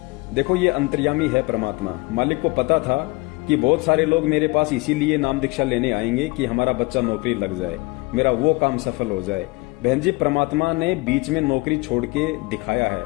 देखो ये अंतर्यामी है परमात्मा। मालिक को पता था कि बहुत सारे लोग मेरे पास इसीलिए नाम दीक्षा लेने आएंगे कि हमारा बच्चा नौकरी लग जाए, मेरा वो काम सफल हो जाए। बहन जी, परमात्मा ने बीच में नौकरी छोड़ के दिखाया है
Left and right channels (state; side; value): quieter; right; 24.9 dB